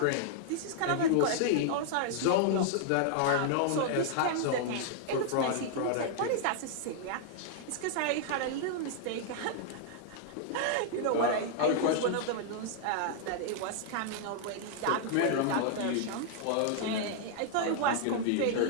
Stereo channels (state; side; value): different; both; correlation -0.01